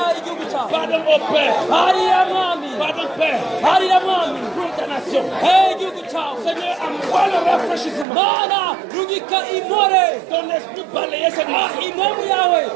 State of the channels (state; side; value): drops out; left; at 8.1 s